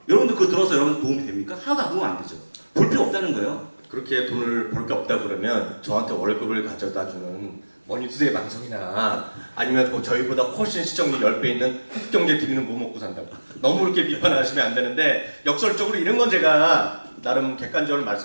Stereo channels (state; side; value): inverted; both; correlation -1.00